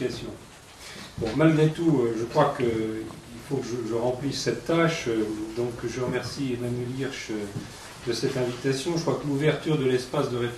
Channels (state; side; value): identical; both; correlation 1.00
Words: Bon, malgré tout, je crois qu'il faut que je remplisse cette tâche, donc je remercie Emmanuel Hirsch de cette invitation. Je crois que l'ouverture de l'espace de